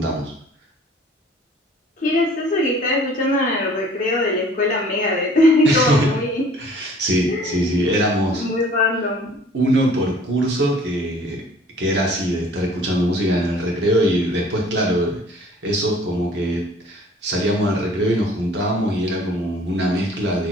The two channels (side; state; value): both; normal; correlation 0.53